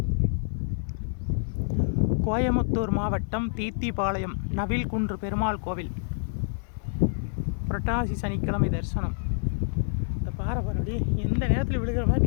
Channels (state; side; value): silent; right; digital silence